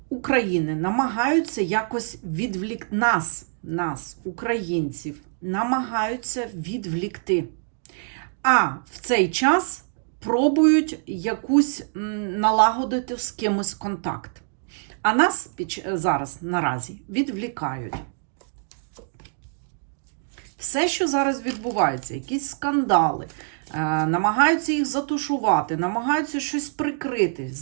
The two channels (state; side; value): silent; left; digital silence